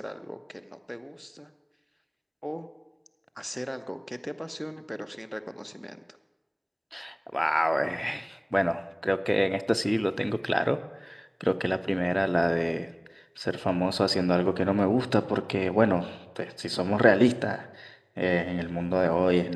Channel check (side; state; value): both; identical; correlation 1.00